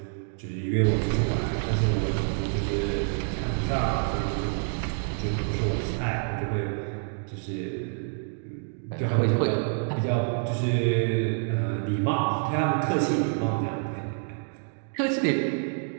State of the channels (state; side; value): silent; left; 60 dB below the other